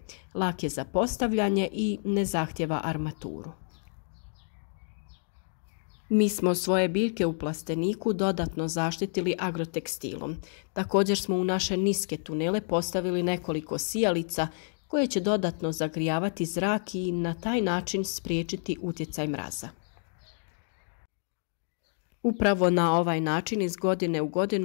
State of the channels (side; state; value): right; silent; 58 dB below the other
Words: lak je za postavljanje i ne zahtjeva armaturu. Mi smo svoje biljke u plasteniku dodatno zaštitili agrotekstilom. Također smo u naše niske tunele postavili nekoliko sijalica koje će dodatno zagrijavati zrak i na taj način spriječiti utjecaj mraza. Upravo na ovaj način iz godine u